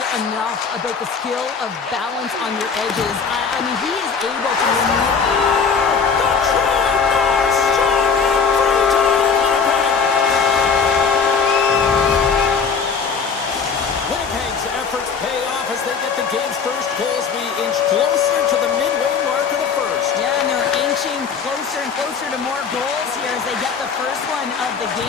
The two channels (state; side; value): quieter; right; 5.7 dB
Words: enough about the skill of balance on your edges. I mean, he is able to Winnipeg's efforts pay off as they get the game's first goals. We inch closer to the midway mark of the first. Yeah, and they're inching closer and closer to more goals here as they get the first one of the